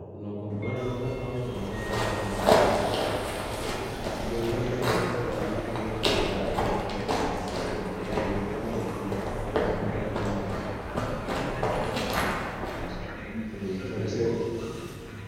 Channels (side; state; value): both; identical; correlation 1.00